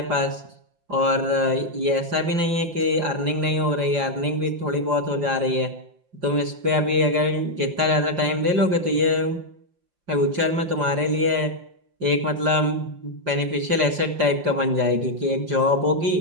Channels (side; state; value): left; late; 5.0 ms